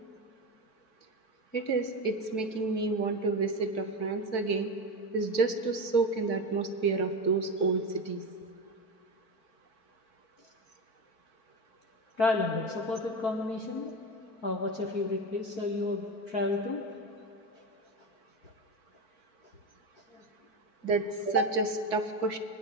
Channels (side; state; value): right; late; 4.5 ms